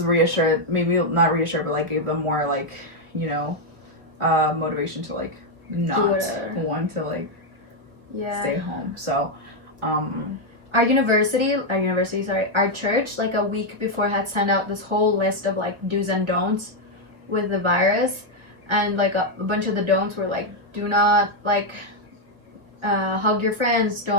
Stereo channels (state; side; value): late; left; 1.2 ms